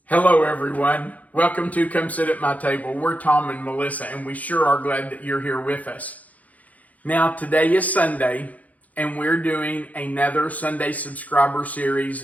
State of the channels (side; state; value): right; late; 0.075 ms